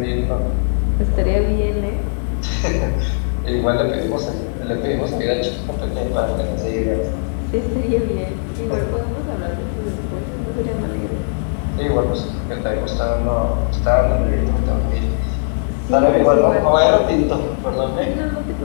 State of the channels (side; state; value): right; silent; digital silence